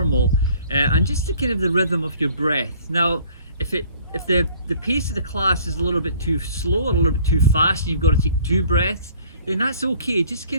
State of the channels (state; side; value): inverted; both; correlation -0.54